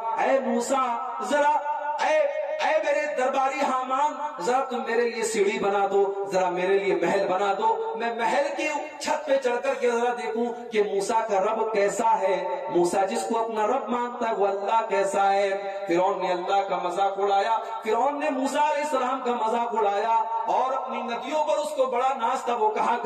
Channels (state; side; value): identical; both; correlation 1.00